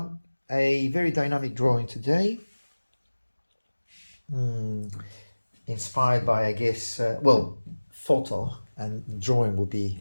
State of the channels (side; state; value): both; inverted; correlation -1.00